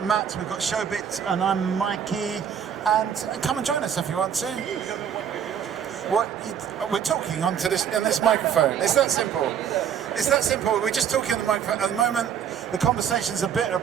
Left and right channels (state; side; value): quieter; left; 8.3 dB